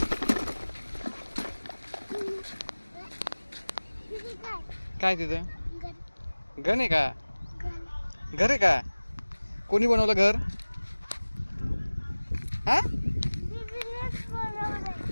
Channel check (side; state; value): both; inverted; correlation -1.00